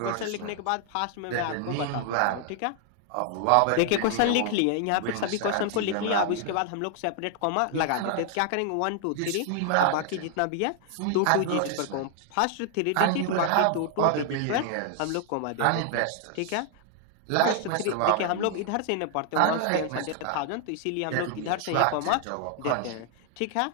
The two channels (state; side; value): different; both; correlation 0.00